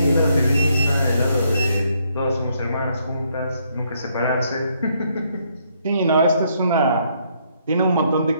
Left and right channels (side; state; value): both; inverted; correlation -0.72